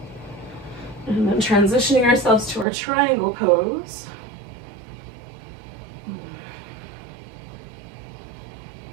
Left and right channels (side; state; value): left; drops out; at 2.7 s